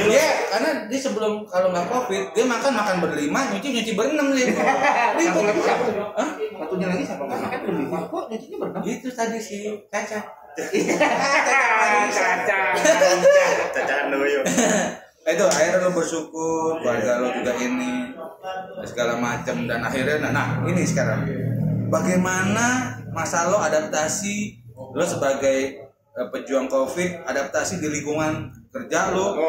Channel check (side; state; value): both; identical; correlation 1.00